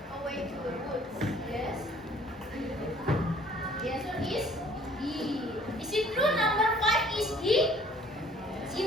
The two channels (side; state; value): both; normal; correlation 0.56